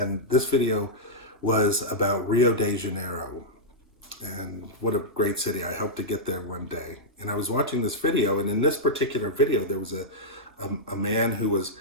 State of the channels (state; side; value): normal; both; correlation -0.08